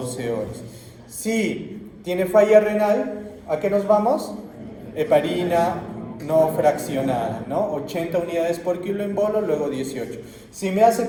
horas. Si tiene falla renal, ¿a qué nos vamos? Heparina no fraccionada, ¿no? 80 unidades por kilo en bolo, luego 18. Si me hace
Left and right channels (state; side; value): identical; both; correlation 1.00